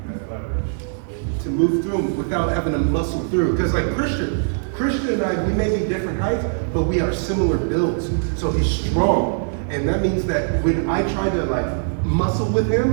leverage. To move through them without having to muscle through. Because like Christian and I, we may be different heights, but we are similar builds. So he's strong. And that means that when I try to like muscle with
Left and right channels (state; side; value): silent; left; digital silence